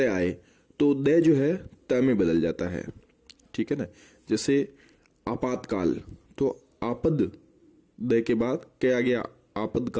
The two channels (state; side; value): identical; both; correlation 1.00